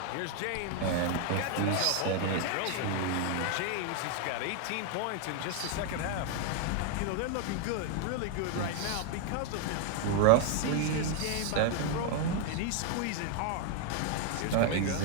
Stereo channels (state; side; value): different; both; correlation 0.00